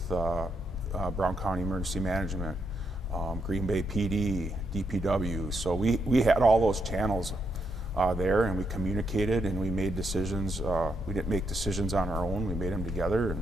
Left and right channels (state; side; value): normal; both; correlation 0.79